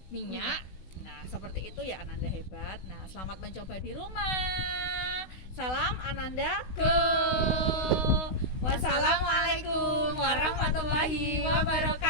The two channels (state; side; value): late; right; 16 ms